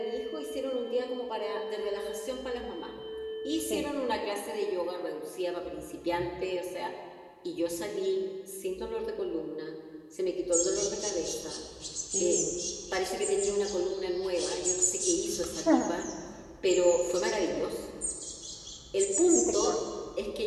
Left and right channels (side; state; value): both; identical; correlation 1.00